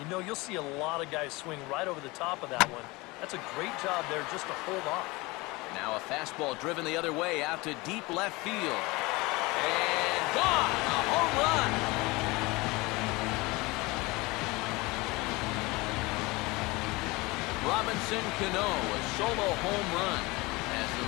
You'll see a lot of guys swing right over the top of that one. That's a great job there just to hold off. Now a fastball driven the other way out to deep left field. And gone! A home run! Robinson Canó, a solo home run as the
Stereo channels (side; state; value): right; quieter; 23.3 dB